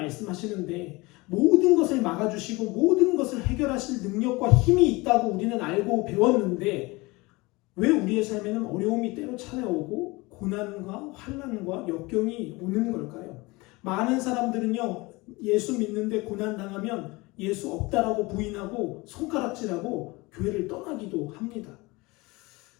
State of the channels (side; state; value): right; quieter; 23.5 dB